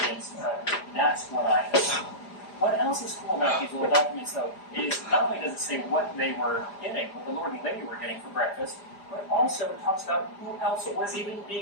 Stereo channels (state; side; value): late; right; 4.9 ms